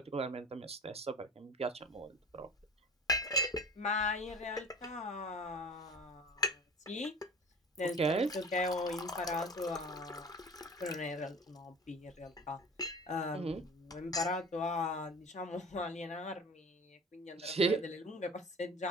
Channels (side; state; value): both; normal; correlation 0.39